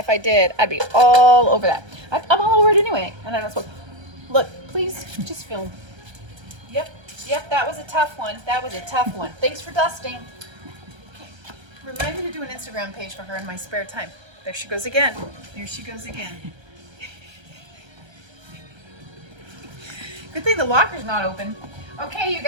I did, I'd be all over that. I'm all over it anyway, and I don't smoke. Look, please, just film. Yep, that was a tough one. That was a tough one. Thanks for dusting. Remind me to do an Instagram page for her in my spare time. There she goes again. There she goes again. Good thing the locker's not open. Okay, you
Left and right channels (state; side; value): late; left; 1.3 ms